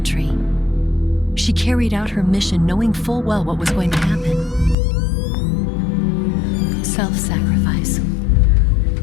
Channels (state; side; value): drops out; right; at 4.8 s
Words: She carried out her mission knowing full well what was going to happen. Self-sacrifice.